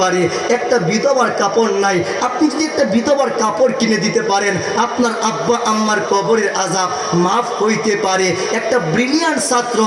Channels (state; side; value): identical; both; correlation 1.00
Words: পারে। একটা বিধবার কাপড় নাই, আপনি যদি একটা বিধবার কাপড় কিনে দিতে পারেন, আপনার আব্বা আম্মার কবরের আযাব মাফ হইতে পারে। একটা ব্রিলিয়ান্ট ছাত্র,